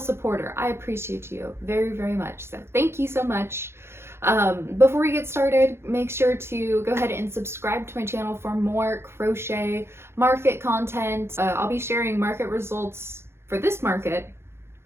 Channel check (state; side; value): late; left; 0.12 ms